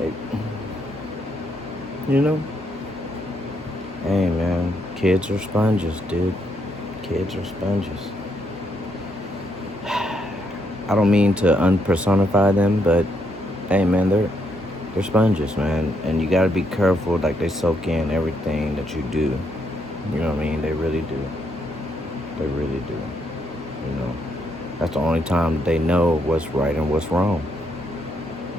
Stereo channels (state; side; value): normal; both; correlation 0.76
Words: you know? Hey, man. Kids are sponges, dude. Kids are sponges. I don't mean to unpersonify them, but hey, man, they're sponges, man, and you gotta be careful. Like, they soak in everything that you do. You know what I mean? They really do. They really do. You know, that's the only time that they know what's right and what's wrong.